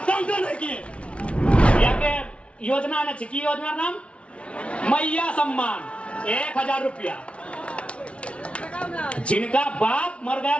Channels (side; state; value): right; late; 0.061 ms